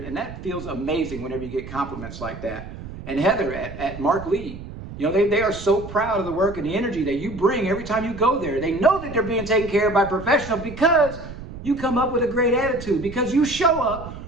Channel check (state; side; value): noise; right; rumble, 12 dB below the sound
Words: and that feels amazing whenever you get compliments like that. And Heather at Mark Lee, they are so proud of the work and the energy that you bring every time you go there. They know that they're being taken care of by professionals because you come up with a great attitude, because you show up